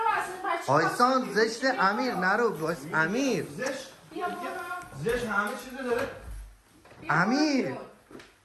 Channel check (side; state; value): both; identical; correlation 1.00